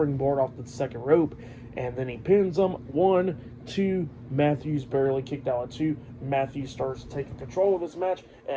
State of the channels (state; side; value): identical; both; correlation 1.00